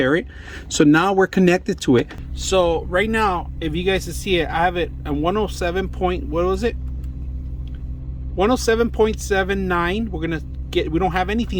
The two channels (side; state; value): both; identical; correlation 1.00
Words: it. So now we're connected to it. So right now, if you guys can see it, I have it at 107 point, what was it? 107.79. We're going to get, we don't have